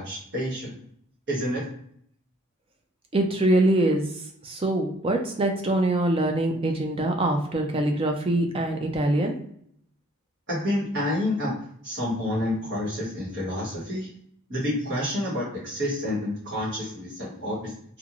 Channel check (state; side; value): normal; both; correlation 0.59